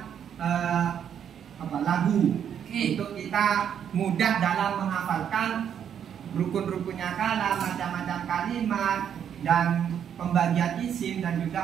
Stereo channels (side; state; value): left; quieter; 8.7 dB